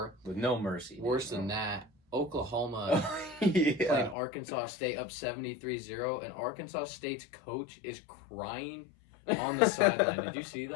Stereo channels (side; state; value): right; drops out; at 4.2 s